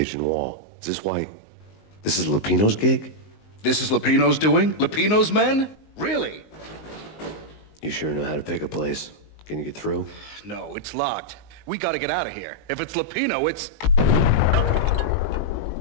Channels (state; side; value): late; right; 19 ms